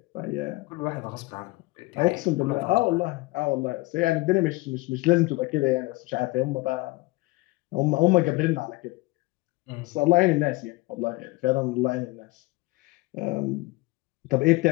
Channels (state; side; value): quieter; right; 22.1 dB